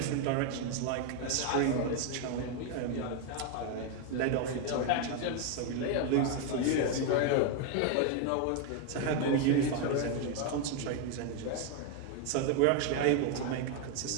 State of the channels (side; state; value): both; different; correlation 0.01